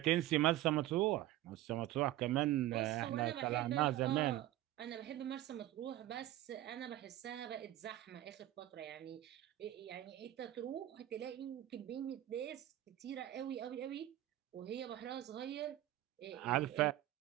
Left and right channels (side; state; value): left; quieter; 14.4 dB